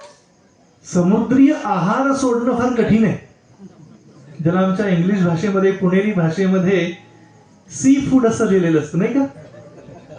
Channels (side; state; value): both; identical; correlation 1.00